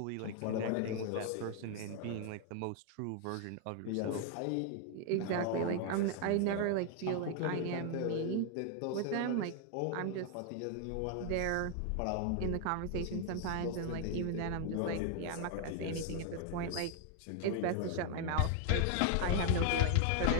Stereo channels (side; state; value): both; different; correlation 0.00